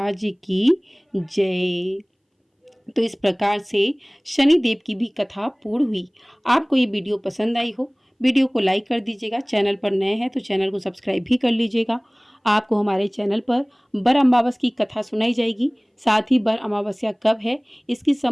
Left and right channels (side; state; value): both; identical; correlation 1.00